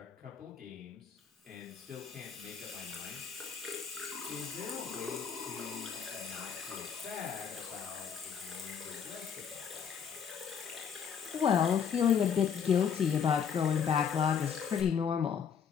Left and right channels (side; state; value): right; quieter; 7.3 dB